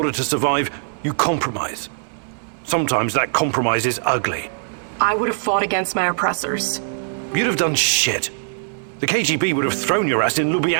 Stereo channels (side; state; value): left; silent; 62 dB below the other